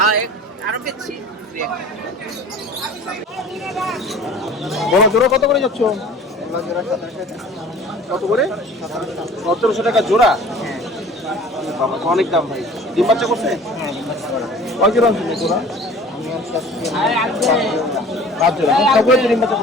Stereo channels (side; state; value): both; normal; correlation 0.45